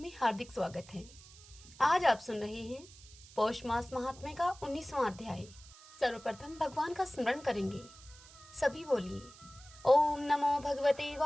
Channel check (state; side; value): noise; right; hiss, 21 dB below the sound